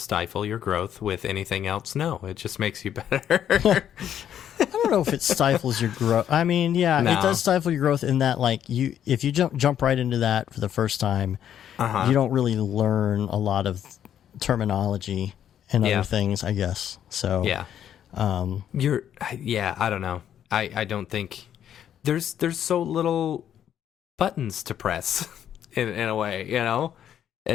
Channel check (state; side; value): quieter; right; 9.9 dB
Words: your growth. With anything else, no. It just makes you better. I don't know if it stifles your growth. I mean, yeah, it does stifle your growth in that, like, if you jump right into that for the first time, you don't really learn a lot of terminology and other things, I guess. So I don't know. I don't think there's so little buttons to press in a way, you know.